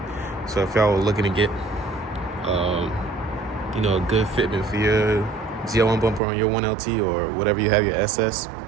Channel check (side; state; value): left; drops out; at 6.2 s